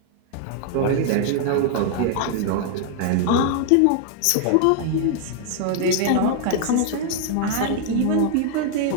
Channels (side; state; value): both; different; correlation 0.00